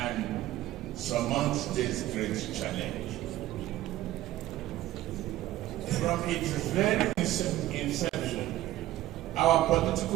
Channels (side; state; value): left; quieter; 15.0 dB